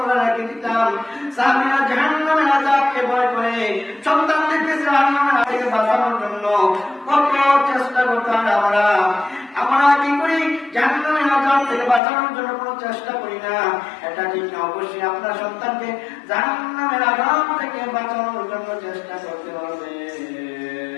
রেখে দিতাম। সাহাবীরা জাহান্নামের আযাবকে ভয় করে সন্তানদেরকে জাহান্নামের আযাব থেকে বাঁচানোর জন্য কত চেষ্টা করতাম। আমরা কি করি? জাহান্নামের আযাব থেকে বাঁচানোর জন্য কোনো চেষ্টা করি না। এটা ঠিক না। অবশ্যই আপনার সন্তানকে জাহান্নামের আযাব থেকে বাঁচানোর জন্য চেষ্টা করতে হবে।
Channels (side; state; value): right; drops out; at 12.0 s